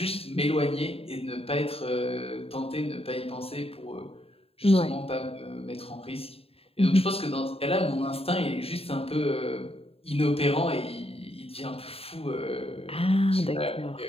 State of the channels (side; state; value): right; late; 0.28 ms